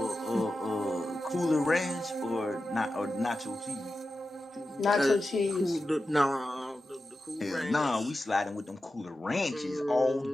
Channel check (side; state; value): both; normal; correlation 0.92